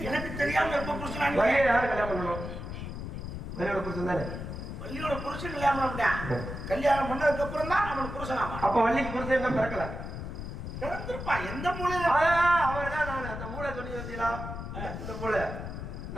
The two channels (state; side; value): noise; left; rumble, 7 dB below the sound